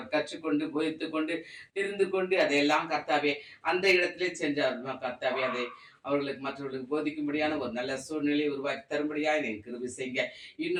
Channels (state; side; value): identical; both; correlation 1.00